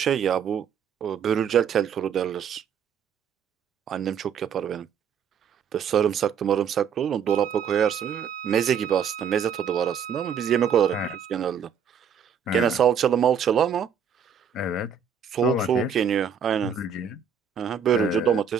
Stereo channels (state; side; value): quieter; left; 7.3 dB